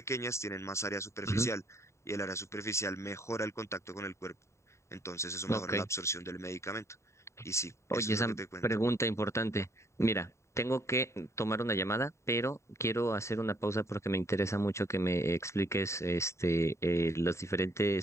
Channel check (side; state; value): right; late; 0.14 ms